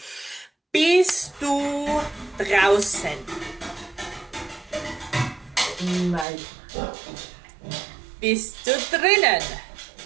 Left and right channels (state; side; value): drops out; left; at 6.2 s